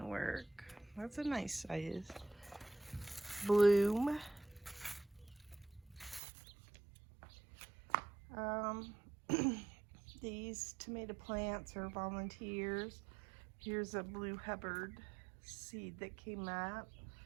work. That's a nice size bloom. These tomato plants are volunteers. Here's a blue Hubbard seed that came up.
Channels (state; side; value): drops out; left; at 6.2 s